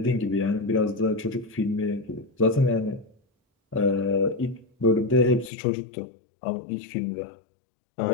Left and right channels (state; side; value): drops out; right; at 5.5 s